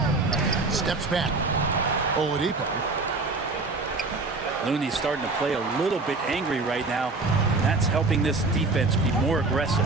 Steps back. Oladipo. Looney's starting to play a little bit angry right now. That's helping this defense be more aggressive.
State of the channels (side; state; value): left; quieter; 3.6 dB